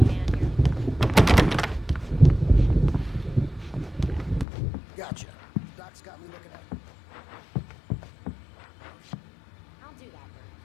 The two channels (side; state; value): right; drops out; at 4.5 s